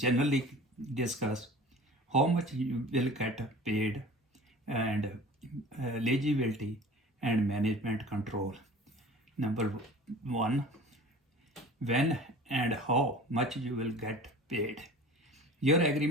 discuss how much you will get paid and eligibility and management control. Number one, when and how much you will get paid. Your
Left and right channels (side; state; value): both; normal; correlation 0.42